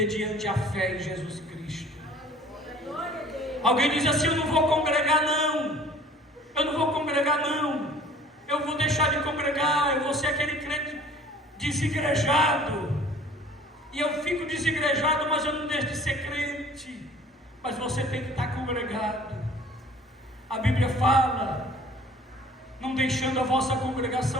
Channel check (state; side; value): normal; both; correlation 0.50